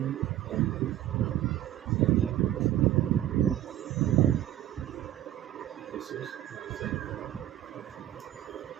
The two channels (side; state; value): left; quieter; 12.9 dB